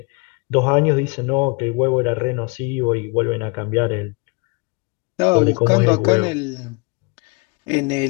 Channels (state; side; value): quieter; right; 30.5 dB